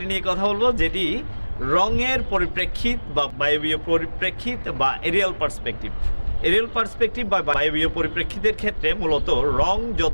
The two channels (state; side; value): inverted; both; correlation -1.00